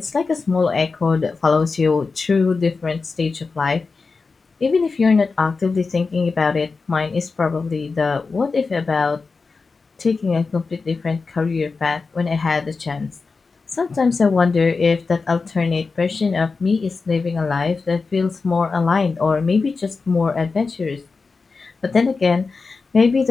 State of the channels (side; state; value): right; quieter; 4.4 dB